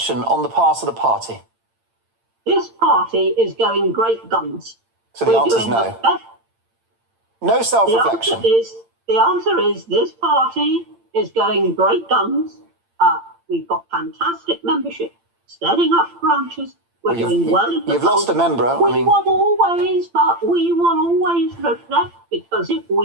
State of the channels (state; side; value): late; left; 8.8 ms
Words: on the part of the party? This party is going great guns. So the answer is no. No self-reflection. The answer is this party is going great guns. We've got fantastic membership, setting up branches. We're doing well. You've lost a member. We will always reflect, because if